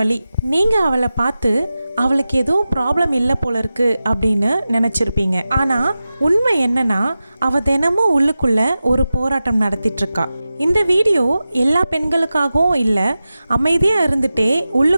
நீங்கள் அவளை பார்த்து அவளுக்கு எதுவும் ப்ராப்ளம் இல்லை போல இருக்கு அப்படின்னு நினச்சிருப்பீங்க. ஆனால் உண்மை என்னன்னா, அவள் தினமும் உள்ளுக்குள்ளே ஒரு போராட்டம் நடத்திட்டுருக்கா. இந்த வீடியோ எல்லா பெண்களுக்காகவும் இல்லை, அமைதியாக இருந்துகிட்டே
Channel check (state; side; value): inverted; both; correlation -0.94